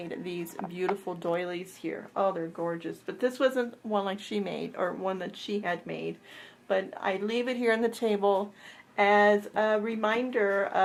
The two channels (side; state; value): both; identical; correlation 1.00